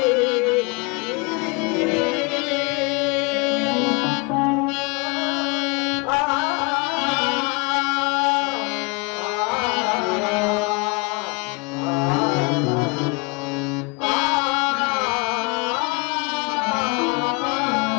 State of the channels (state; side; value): quieter; right; 29.3 dB